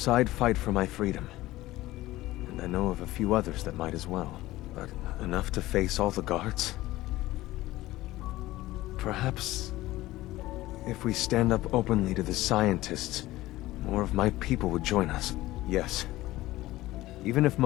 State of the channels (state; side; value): quieter; right; 17.1 dB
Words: I'd fight for my freedom. And I know of a few others that might as well. But enough to face all the guards? Perhaps if we stand up openly to the scientists, more of my people would join us. Yes. Even if